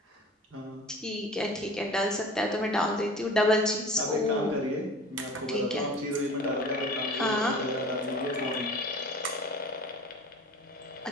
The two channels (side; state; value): both; normal; correlation 0.42